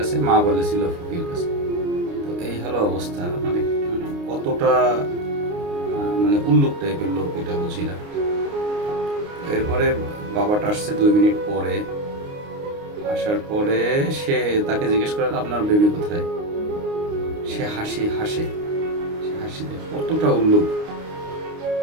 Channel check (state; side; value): late; left; 29 ms